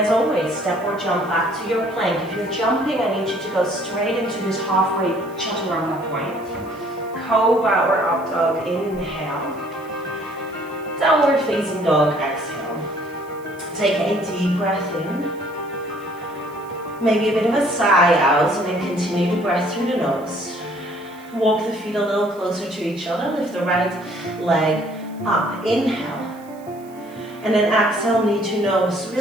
always, step or jump back to your plank. If you're jumping, I need you to go straight into this halfway chaturanga point. Cobra or up dog, inhale. Downward facing dog, exhale. Take a deep breath in. Maybe a bit of a sigh out, and then continue to breath through the nose. Walk the feet a little closer to each other. Lift the right leg up. Inhale. And then exhale, knee to nose.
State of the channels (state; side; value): noise; right; hiss, 27 dB below the sound